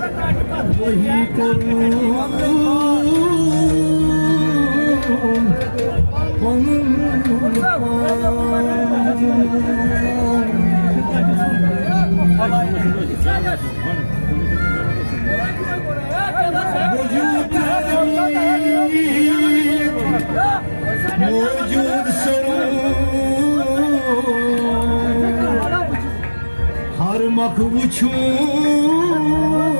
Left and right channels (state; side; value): inverted; both; correlation -1.00